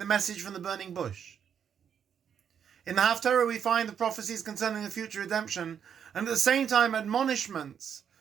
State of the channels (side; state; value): left; quieter; 8.1 dB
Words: the message from the burning bush. In the Haftarah, we find the prophecies concerning the future redemption, and at the same time admonishments